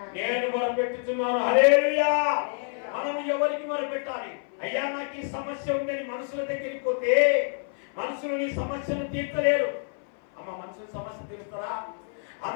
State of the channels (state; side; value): silent; right; 57 dB below the other